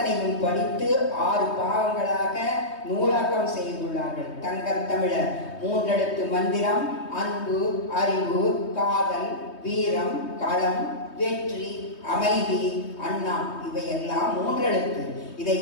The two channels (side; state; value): right; late; 3.2 ms